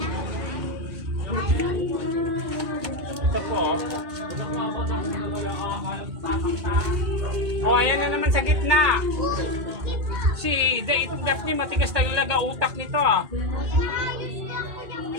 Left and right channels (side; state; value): left; late; 2.2 ms